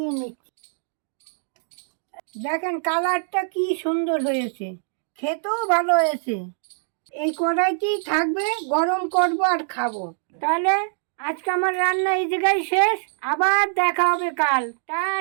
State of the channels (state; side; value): silent; left; digital silence